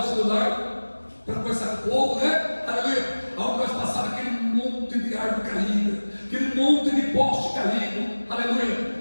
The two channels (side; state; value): both; inverted; correlation -1.00